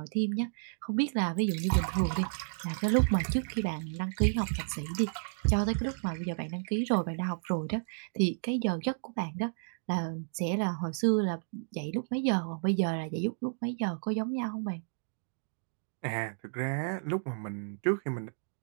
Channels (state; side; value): silent; left; digital silence